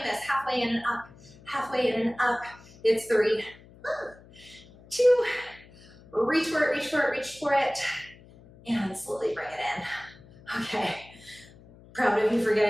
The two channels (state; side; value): noise; left; hum, 23 dB below the sound